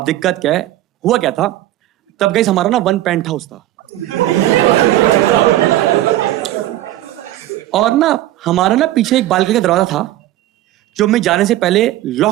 दिक्कत क्या है, हुआ क्या था तब गाइस, हमारा ना 1 पेंट हाउस था, और ना हमारा ना पीछे एक बालकनी का दरवाजा था जो मैं जाने से पहले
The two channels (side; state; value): left; quieter; 14.6 dB